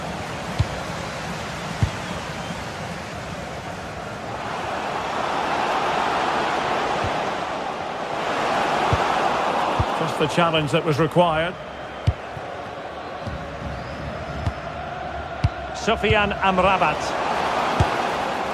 Just the challenge that was required. Sofiane Amrabat.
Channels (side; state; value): both; identical; correlation 1.00